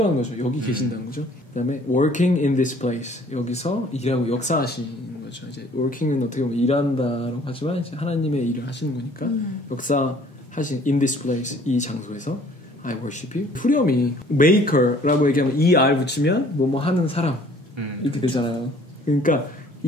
거죠. 여기 계신다는 거죠. 그 다음에 working in this place. 여기서 일하고 역사하시는 거죠. 이제 working은 어떻게 보면 일한다라고 하지만 이제 하나님의 일을 하시는 거니까 역사하신 in this place. 이 장소에서 I worship you. 후렴이 maker라고 얘기하면 ER 붙이면 뭐뭐 하는 사람 이렇게 되잖아요. 그러니까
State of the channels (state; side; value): normal; both; correlation 0.55